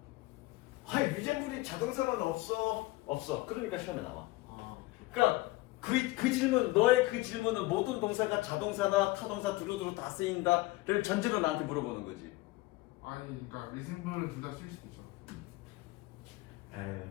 유젠불이 자동사는 없어. 그러니까 시험에 나와. 아. 그러니까 그 질문 너의 그 질문은 모든 동사가 자동사나 타동사 두루두루 다 쓰인다를 전제로 나한테 물어보는 거지. 아니 그러니까 리징블은 둘 다 쓸 수도 있잖아.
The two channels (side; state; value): right; quieter; 20.1 dB